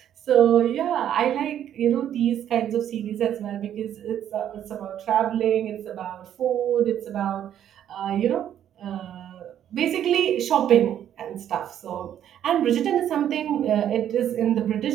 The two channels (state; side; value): quieter; left; 10.4 dB